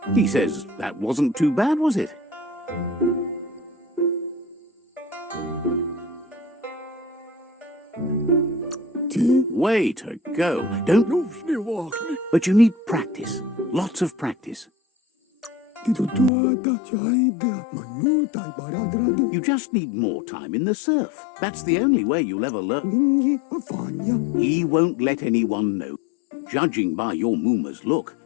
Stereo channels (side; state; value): right; drops out; at 16.3 s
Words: He says that wasn't too bad, was it? Way to go. Don't... But you need practice. Lots of practice. You just need more time in the surf. That's the only way you'll ever learn. He won't let anyone know. Judging by your Mooma's look,